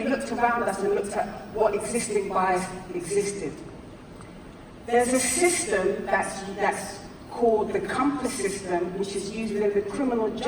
looked around us and looked at what existing bias existed. There's a system that's called the compass system, which is used within the criminal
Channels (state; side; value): identical; both; correlation 1.00